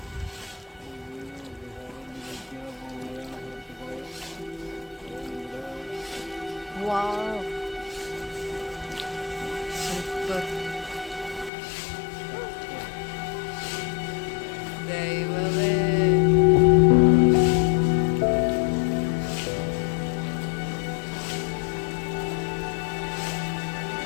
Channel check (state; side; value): drops out; right; at 11.5 s